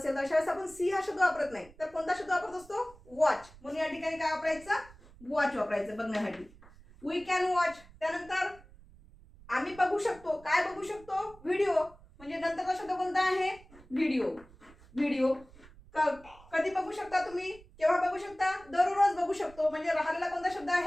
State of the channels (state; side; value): noise; right; rumble, 23 dB below the sound